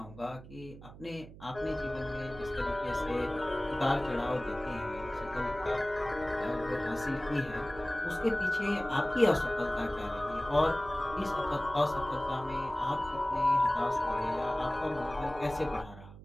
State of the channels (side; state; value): right; noise; hum, 17 dB below the sound